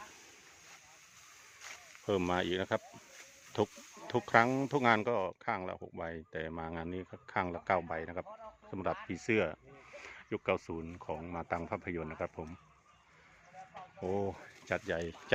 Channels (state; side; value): identical; both; correlation 1.00